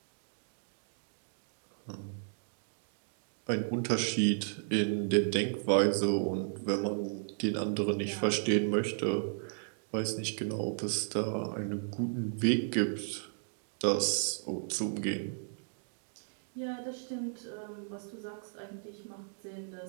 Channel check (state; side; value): silent; left; digital silence